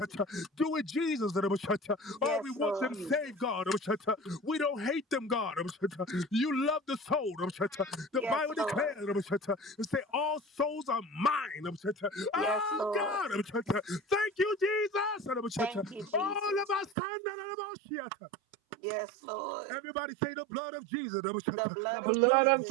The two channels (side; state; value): left; drops out; at 16.9 s